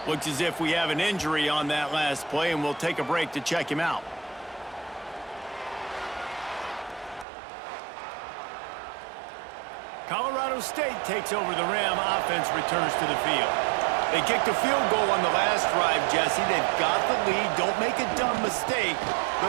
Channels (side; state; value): left; drops out; at 7.2 s